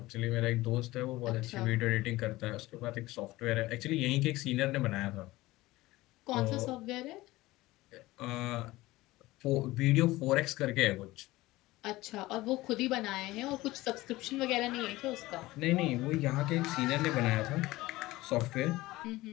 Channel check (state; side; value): quieter; right; 18.7 dB